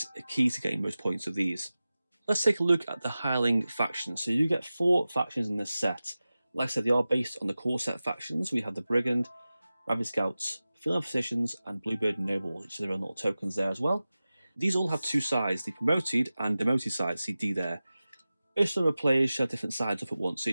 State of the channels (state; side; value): inverted; both; correlation -0.96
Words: a key to getting most points of these. Let's take a look at the Heiling faction. So you get 4 factions in this set. Like I said, they are based on the core set factions. We have the Brigand, Rabbit Scouts, Field Physicians, and Bluebird Nobles, which are their own little tokens there as well. These all have 2 sides, the promoted and demoted side, see D there. Each number of players shall have different sides up at once, so